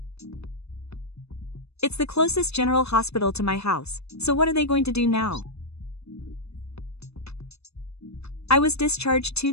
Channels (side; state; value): right; late; 0.79 ms